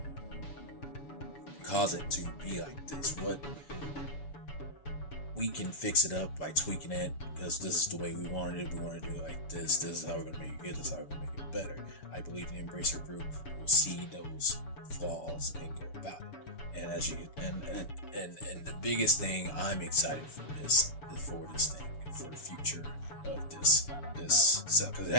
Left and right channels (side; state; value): right; late; 7.0 ms